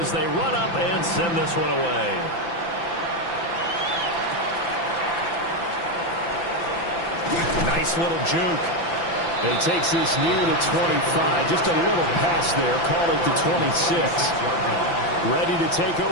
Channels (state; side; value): late; right; 5.9 ms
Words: they run up and send this one away. Nice little juke. He takes this near the 25. Just a little pass there. Call it the 26. Ready to take